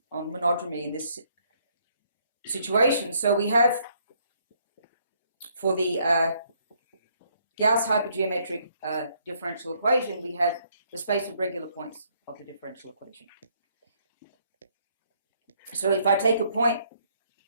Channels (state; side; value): inverted; both; correlation -0.69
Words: monodromy in this situation. So we have, for the Gauss hypergeometric differential equation, we have the space of regular points of the differential equation. So if I take a point